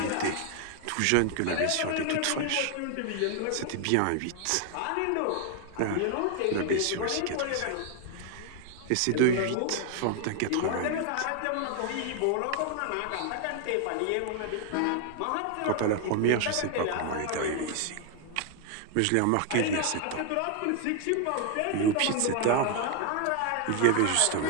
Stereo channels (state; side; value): different; both; correlation 0.00